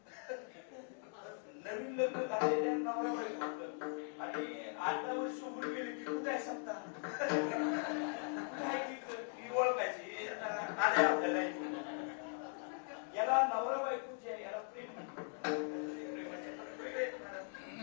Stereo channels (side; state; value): right; silent; 51 dB below the other